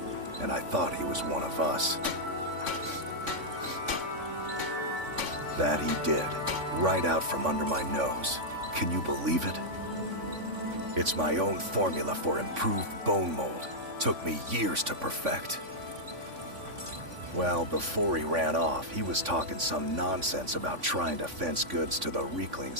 and I thought he was one of us. That he did, right out from under my nose. Can you believe it? It's my own formula for improved Bonemold. Took me years to perfect. Well, before he ran off, he was talking some nonsense about trying to fence goods to the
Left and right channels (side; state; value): left; late; 3.5 ms